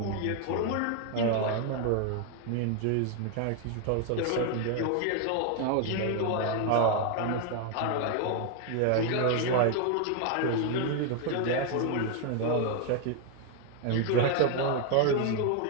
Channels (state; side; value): different; both; correlation 0.01